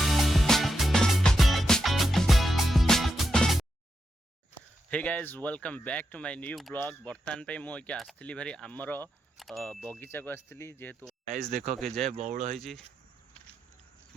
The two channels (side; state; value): both; normal; correlation 0.85